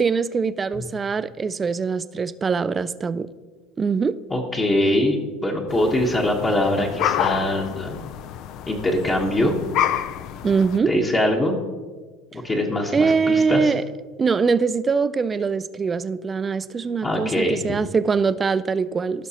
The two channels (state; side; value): normal; both; correlation 0.74